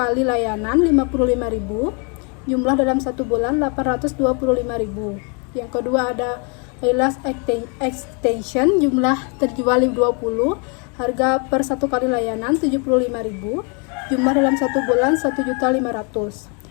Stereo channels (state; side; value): quieter; right; 35.8 dB